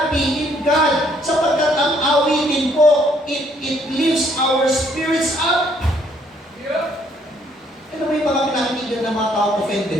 in God. Sapagkat ang awitin po, it lifts our spirits up. Ano ba yung mga pinakikinggan ng mga tao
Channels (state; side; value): normal; both; correlation 0.66